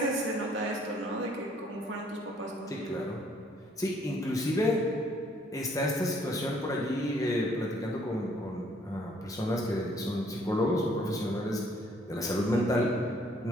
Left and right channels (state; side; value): normal; both; correlation 0.63